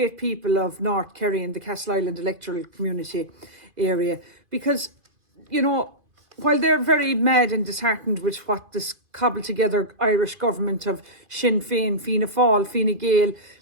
people of North Kerry and the Castleisland electoral community area, because while they're very mad and disheartened with what this cobbled together Irish government of Sinn Féin, Fianna Fáil, Fine Gael,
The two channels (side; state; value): left; late; 2.5 ms